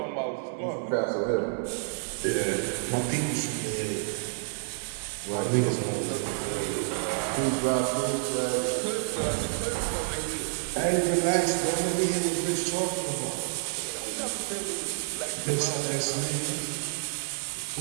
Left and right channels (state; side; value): silent; left; digital silence